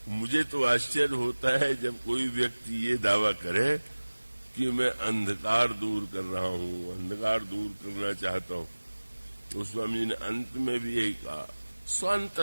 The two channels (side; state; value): both; inverted; correlation -1.00